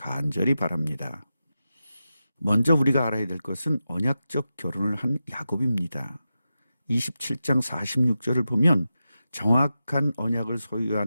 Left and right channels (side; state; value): both; inverted; correlation -0.91